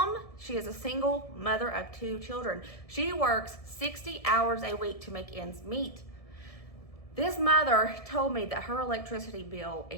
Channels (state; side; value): late; right; 1.7 ms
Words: she is a single mother of 2 children. She works 60 hours a week to make ends meet. This mother told me that her electricity bill